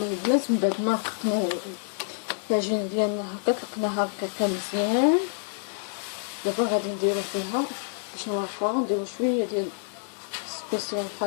البنات من بعد ما رققنا العجينه ديالنا هكا طلقناها هكا مزيان دابا غادي نديرو فيها باش نورقوها، نديرو شويه ديال سبيسيال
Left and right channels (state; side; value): silent; right; digital silence